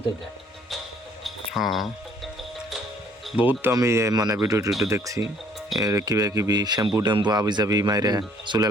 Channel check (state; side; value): normal; both; correlation 0.60